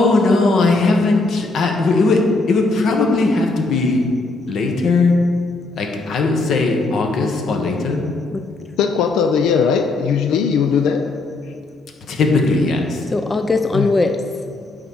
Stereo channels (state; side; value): quieter; right; 3.3 dB